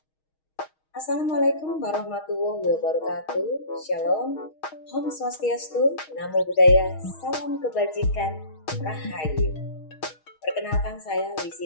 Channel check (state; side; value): late; right; 6.4 ms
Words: warahmatullahi wabarakatuh. Shalom, Om Swastiastu, Namo Buddhaya, Salam Kebajikan, Rahayu. Perkenalkan saya